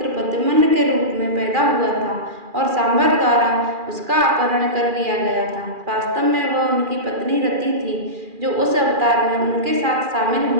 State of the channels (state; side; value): late; left; 2.4 ms